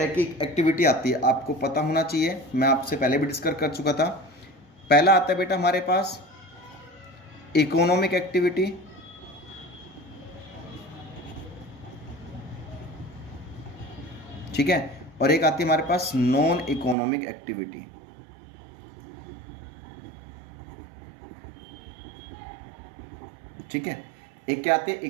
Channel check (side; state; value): left; drops out; at 16.9 s